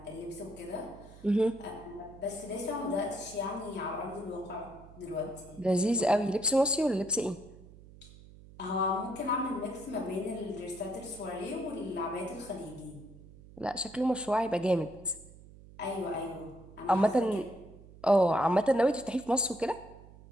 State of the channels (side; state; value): right; noise; hum, 20 dB below the sound